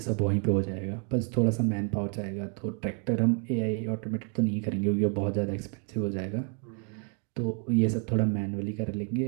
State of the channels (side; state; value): left; quieter; 39.4 dB